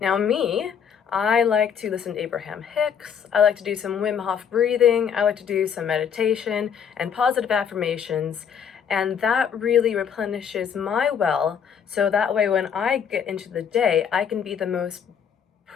me, I like to listen to Abraham Hicks, I like to do some Wim Hof breathing, I like to do some meditation and positive affirmations, And that really replenishes my well, so that way when I get into the day, I can be the most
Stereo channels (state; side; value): quieter; right; 7.6 dB